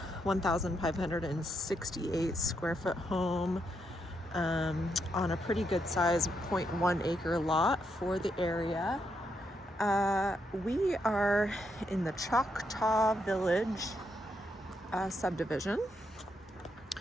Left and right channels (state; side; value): normal; both; correlation 0.79